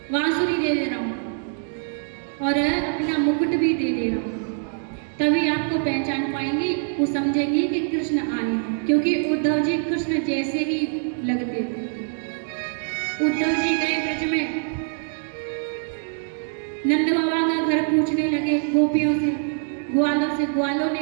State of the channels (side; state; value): left; silent; 63 dB below the other